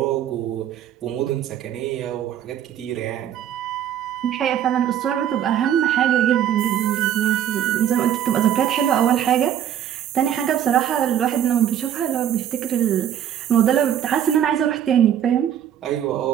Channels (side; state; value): left; quieter; 10.2 dB